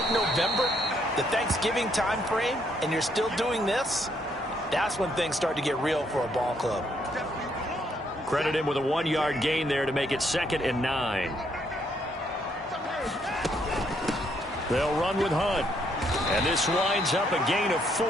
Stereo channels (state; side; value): normal; both; correlation 0.72